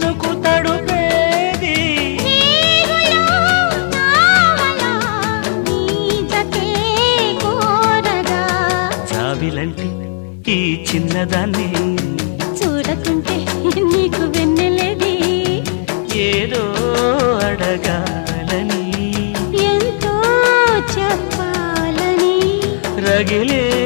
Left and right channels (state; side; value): silent; right; digital silence